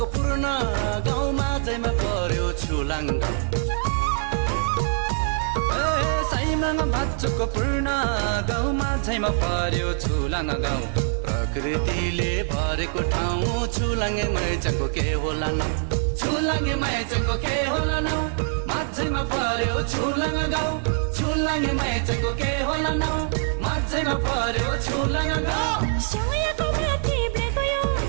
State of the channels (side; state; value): left; silent; digital silence